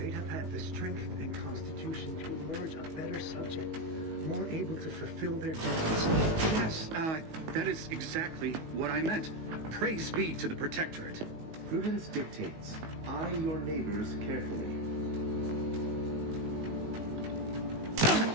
have had the strength and constitution to emerge a better subject, more able to fulfill their duties. Yes, that is exactly what I meant. Praise be to the Protectorate. Prudence dictates. Eye your neighbors carefully.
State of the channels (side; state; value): left; late; 19 ms